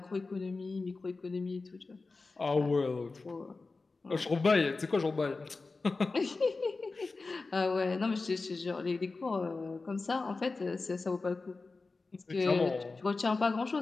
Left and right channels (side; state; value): right; quieter; 3.8 dB